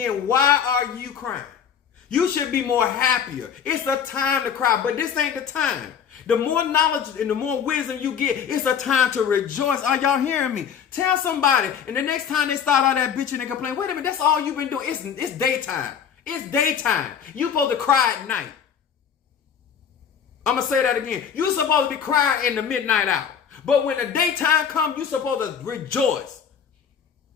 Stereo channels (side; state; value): right; quieter; 7.7 dB